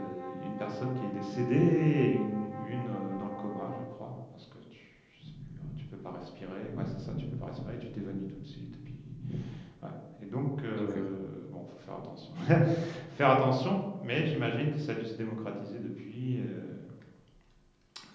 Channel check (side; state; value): both; identical; correlation 1.00